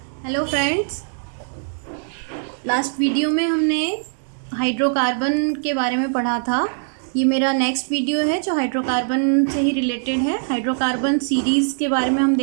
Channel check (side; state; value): left; silent; digital silence